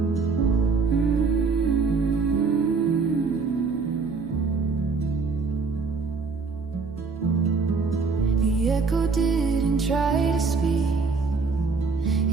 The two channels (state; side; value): quieter; left; 4.6 dB